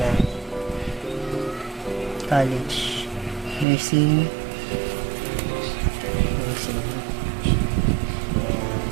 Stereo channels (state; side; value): drops out; left; at 3.7 s